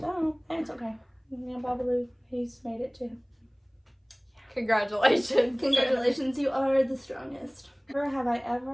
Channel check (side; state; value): both; identical; correlation 1.00